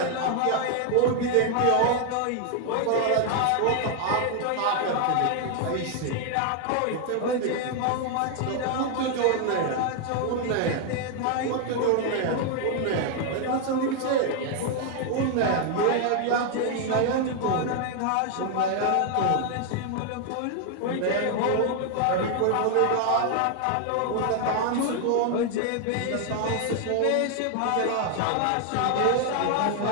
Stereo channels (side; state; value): both; different; correlation 0.00